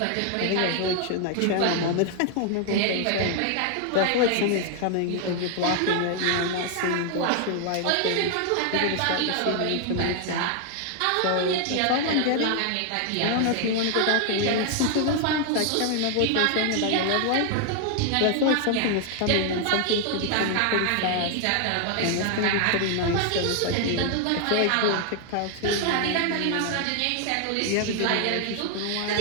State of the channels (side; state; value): both; different; correlation 0.00